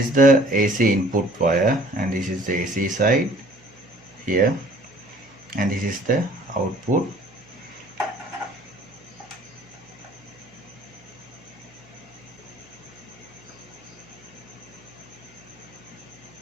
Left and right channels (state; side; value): noise; right; hum, 28 dB below the sound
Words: the AC input wire, and this is the AC side here, and this is the output.